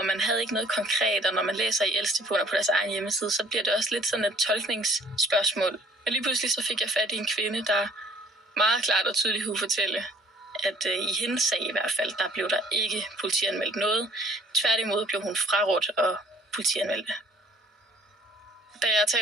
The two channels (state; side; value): normal; both; correlation 0.56